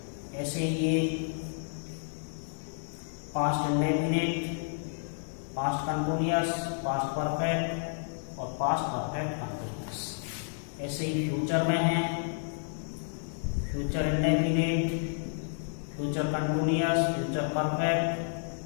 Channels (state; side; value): silent; right; digital silence